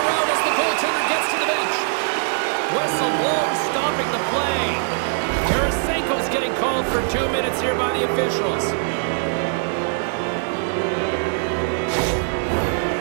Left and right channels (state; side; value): silent; left; 64 dB below the other